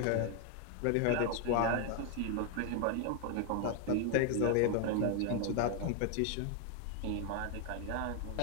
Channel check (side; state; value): both; different; correlation 0.00